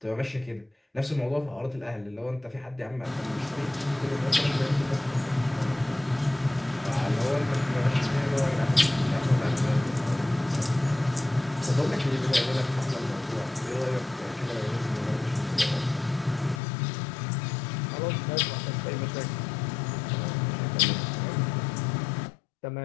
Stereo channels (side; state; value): right; drops out; at 16.6 s